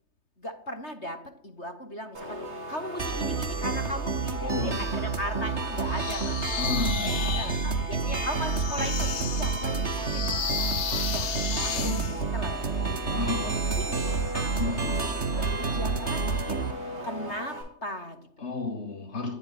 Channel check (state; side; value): late; right; 3.3 ms